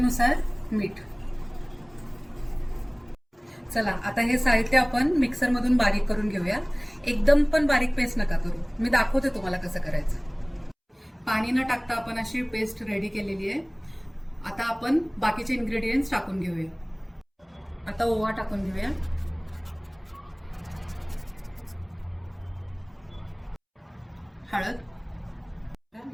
मीठ. चला आता हे साहित्य आपण मिक्सर मधून बारीक करून घेऊया. एकदम पण बारीक पेस्ट नका करू, मी दाखवते तुम्हाला कसं करायचं. पाणी न टाकता आपण अशी पेस्ट रेडी केलेली आहे. आता आपण बाकीचे इन्ग्रेडियंट्स टाकून घेऊया. आता ओवा टाकून घेऊया, हळद,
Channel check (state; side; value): identical; both; correlation 1.00